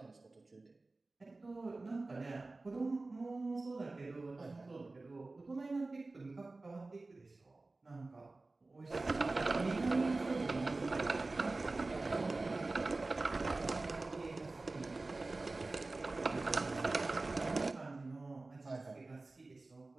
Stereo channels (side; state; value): left; quieter; 3.3 dB